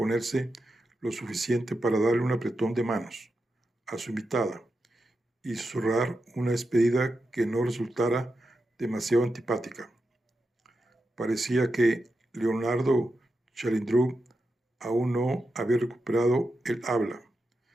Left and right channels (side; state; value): both; normal; correlation 0.88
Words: lo suficiente para darle un apretón de manos a su invitada y susurrar una despedida que no resultara demasiado antipática. Parecía que Leonardo Chalindrú aún no había recuperado el habla,